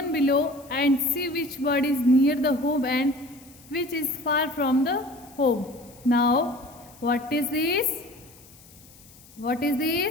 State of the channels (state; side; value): noise; left; hiss, 24 dB below the sound